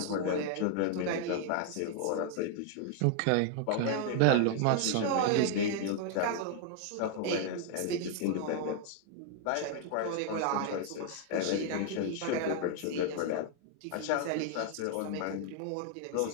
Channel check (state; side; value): different; both; correlation 0.00